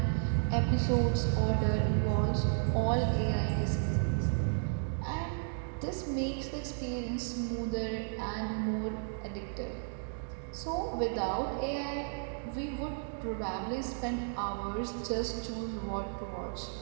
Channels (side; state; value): left; silent; digital silence